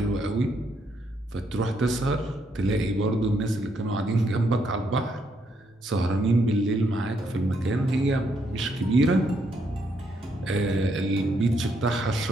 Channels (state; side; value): normal; both; correlation 0.75